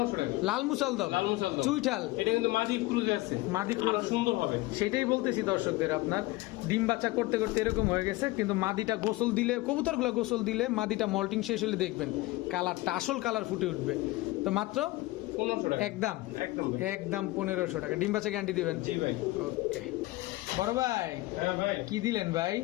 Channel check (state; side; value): quieter; right; 19.9 dB